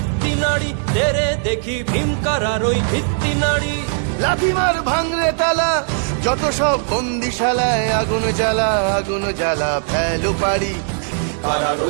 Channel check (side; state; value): left; silent; digital silence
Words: নাড়ি, তেরে দেখি ভীমকারার ওই ভিত্তি নাড়ি। লাথি মার ভাঙরে তালা, যত সব বন্দিশালায় আগুন জ্বালা, আগুন জ্বালা ফেলো পারি। কারার